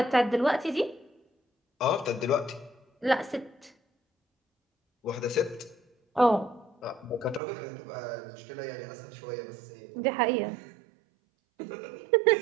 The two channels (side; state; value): left; drops out; at 7.4 s